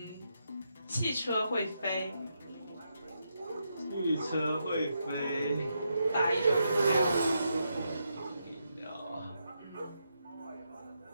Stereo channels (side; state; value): both; inverted; correlation -0.82